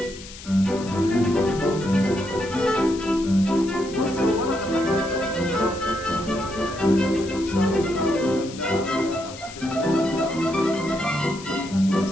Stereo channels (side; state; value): left; noise; hiss, 15 dB below the sound